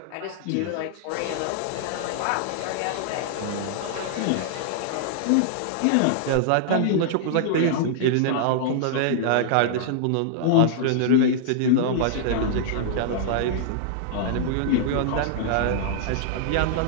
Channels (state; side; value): different; both; correlation -0.01